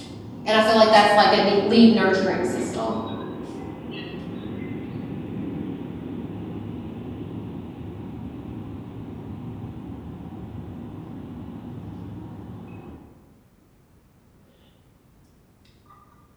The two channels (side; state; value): both; identical; correlation 1.00